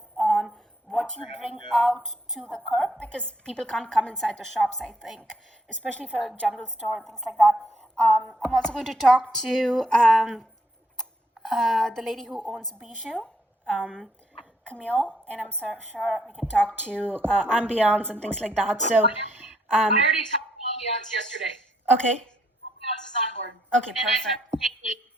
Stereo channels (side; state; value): both; normal; correlation 0.72